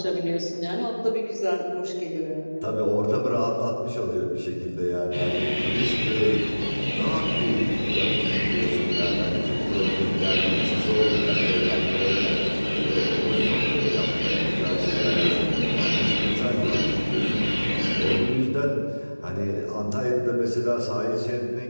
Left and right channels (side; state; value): both; inverted; correlation -1.00